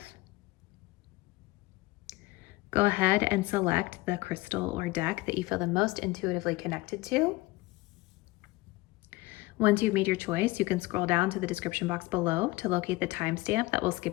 Go ahead and select the crystal or deck that you feel the most intuitively connected to. Once you've made your choice, you can scroll down to the description box below to locate the timestamp that will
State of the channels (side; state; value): right; quieter; 20.8 dB